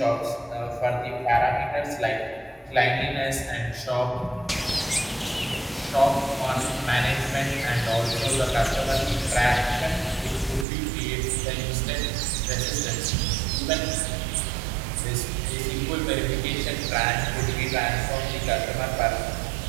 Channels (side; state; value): left; drops out; at 10.7 s